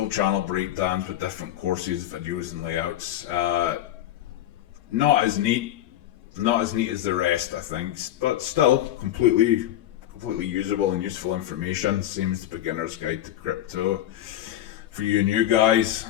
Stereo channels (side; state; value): right; quieter; 12.8 dB